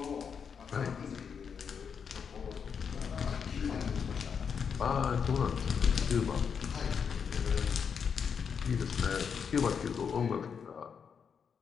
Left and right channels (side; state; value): right; quieter; 6.7 dB